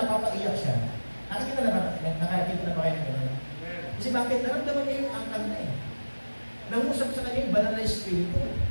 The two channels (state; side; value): inverted; both; correlation -1.00